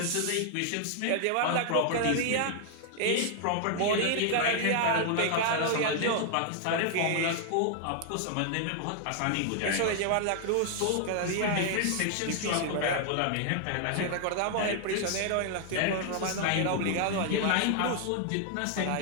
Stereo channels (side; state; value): both; different; correlation 0.00